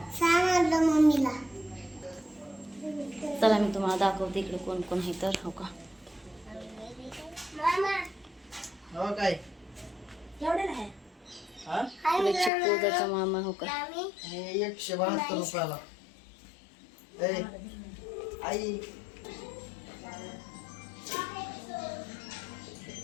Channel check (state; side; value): drops out; right; at 12.5 s